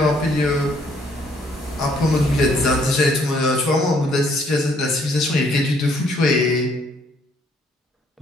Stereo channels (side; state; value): both; normal; correlation 0.66